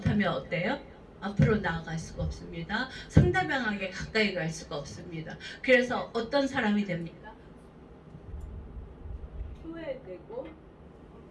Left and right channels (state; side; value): identical; both; correlation 1.00